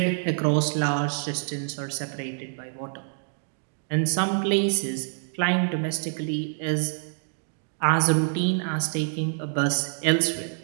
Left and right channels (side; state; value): left; silent; digital silence